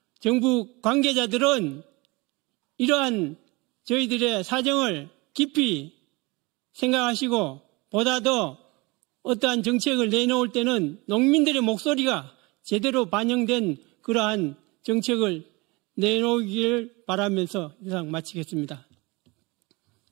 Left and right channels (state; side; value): quieter; left; 25.1 dB